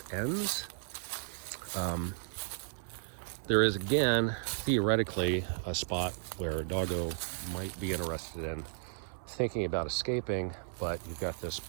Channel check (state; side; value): silent; left; 55 dB below the other